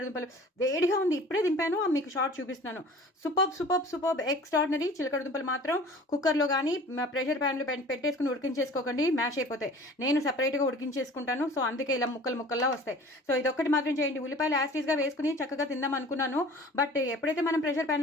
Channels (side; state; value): both; normal; correlation 0.45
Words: దుంపలు వేడిగా ఉంది, ఇప్పుడే దింపాను, మీకు షార్ట్ చూపిస్తున్నాను. Super extraordinary. చిలకడ దుంపలు మాత్రం కుక్కర్లో కానీ ప్రెషర్ ప్యాన్లో పెట్టేసుకుని ఉడికించేసుకోకండి, మ్యాష్ అయిపోతాయి. నేను సపరేట్గా ఉడికించేసుకుంటాను. సో అందుకే ఇలా ముక్కల్లా వస్తాయి. సో ఇదొక్కటి మాత్రం చేయండి. ఉల్లిపాయలు యాస్టీస్గా వేసుకుని చక్కగా తిందాం అనుకున్నాను. బట్ ఎప్పుడైతే మనం ప్రెషర్